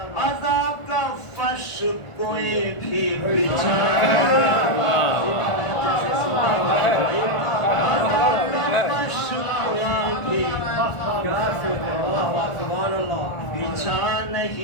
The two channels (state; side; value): late; right; 1.4 ms